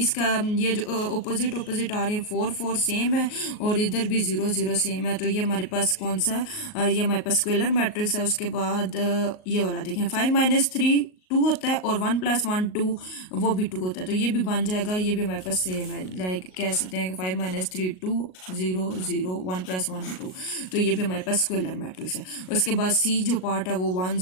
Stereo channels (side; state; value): right; late; 38 ms